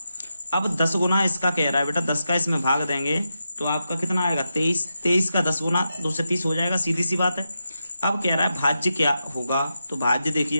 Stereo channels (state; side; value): inverted; both; correlation -0.88